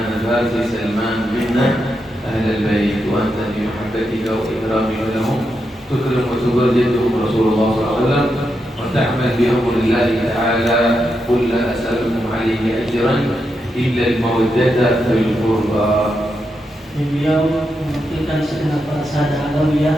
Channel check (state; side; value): normal; both; correlation 0.85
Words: الفارسي سلمان منا اهل البيت. وانت في محبتك واكرامك لهم تكرم وتبرجهم رسول الله صلى الله عليه وسلم وتعمل بامر الله تعالى. قل لا أسألكم عليه أجرا إلا المودة في القربى. Beliau mewakilkan segenap para sahadat